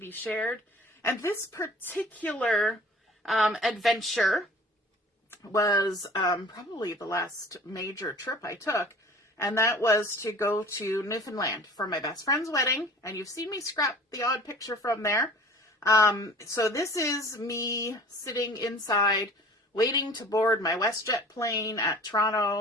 Shared. And this particular adventure was probably the last major trip I took, and that was to go to Newfoundland for my best friend's wedding, and you've seen me scrap the odd picture from there. So this is me sitting inside waiting to board my WestJet plane at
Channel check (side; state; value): both; normal; correlation 0.45